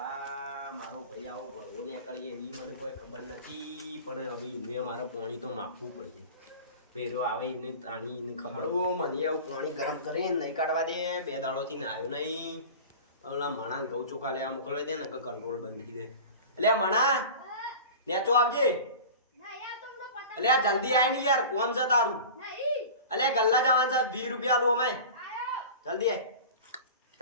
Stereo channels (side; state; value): both; inverted; correlation -0.35